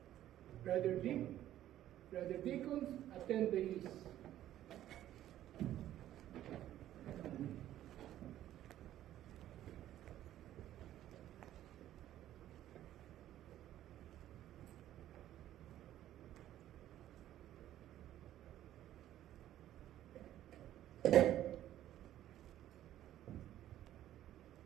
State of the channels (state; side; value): quieter; left; 12.7 dB